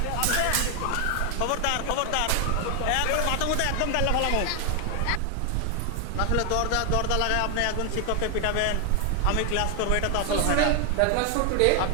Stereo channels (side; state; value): both; different; correlation 0.00